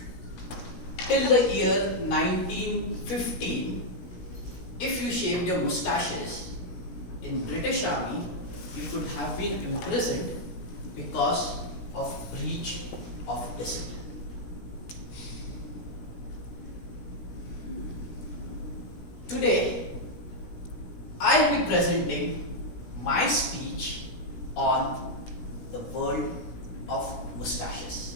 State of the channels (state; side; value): late; right; 17 ms